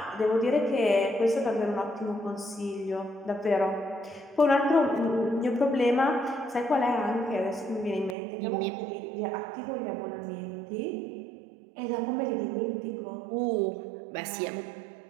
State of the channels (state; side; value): drops out; left; at 8.2 s